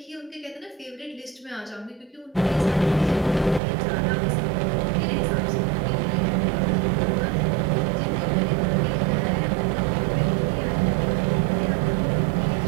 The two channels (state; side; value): drops out; left; at 3.6 s